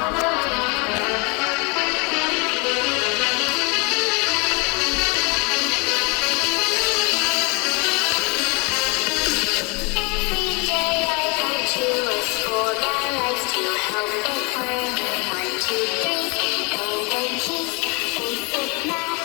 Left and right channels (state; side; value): quieter; right; 30.4 dB